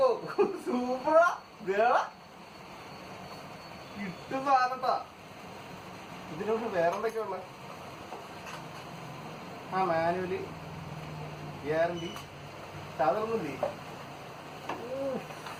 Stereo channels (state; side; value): identical; both; correlation 1.00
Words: സൂപ്പറാ, കിട്ടും സാധനത്താ. ഇതിനോട് വേറെന്തൊക്കെയാ ഉള്ളത്? ആ മാനുവല്, ഗ്യാരണ്ടി, ചാർജറൊന്നുമില്ലേ?